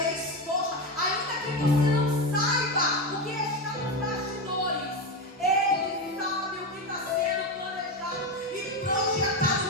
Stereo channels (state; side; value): normal; both; correlation 0.15